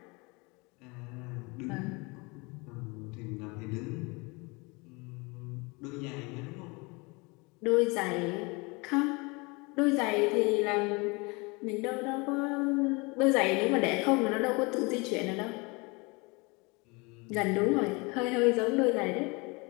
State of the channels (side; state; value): right; quieter; 27.6 dB